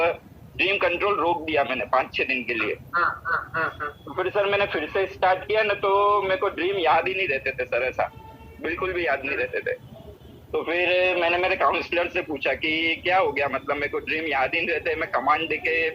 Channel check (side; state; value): both; identical; correlation 1.00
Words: कंट्रोल रोक दिया मैंने 5-6 दिन के लिए। तो फिर सर मैंने फिर से स्टार्ट किया ना, तो मेरे को ड्रीम याद ही नहीं रहते थे सर ऐसा, बिल्कुल भी याद नहीं रहते थे। तो फिर मैंने मेरे काउंसलर से पूछा कि क्या हो गया, मतलब मेरे को ड्रीम याद ही नहीं रहते, मैं कमांड देके